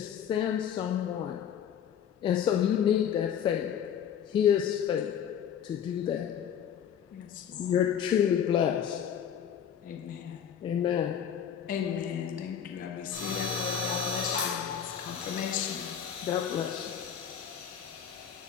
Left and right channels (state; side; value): quieter; right; 8.6 dB